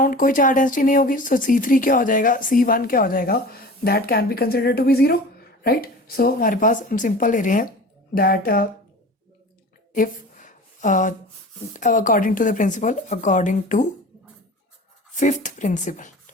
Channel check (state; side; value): normal; both; correlation 0.38